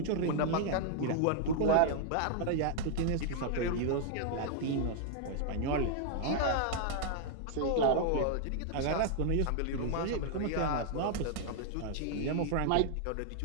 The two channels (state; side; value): different; both; correlation -0.01